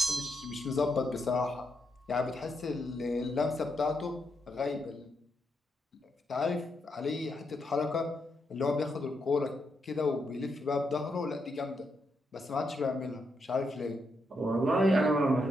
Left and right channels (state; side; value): normal; both; correlation 0.81